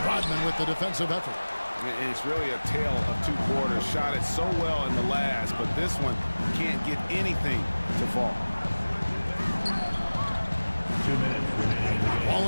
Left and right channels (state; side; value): inverted; both; correlation -1.00